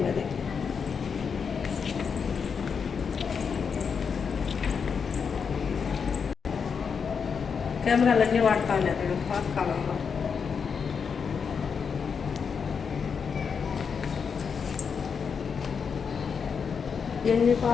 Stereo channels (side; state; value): right; quieter; 6.2 dB